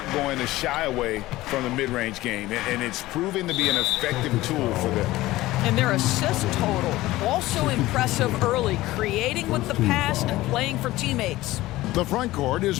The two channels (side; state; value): right; quieter; 17.4 dB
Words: going to shy away from the mid-range game, and it's proving to be an effective tool for them. And their assist total, also impressive early, creating with the pass and playing for teammates. The front court is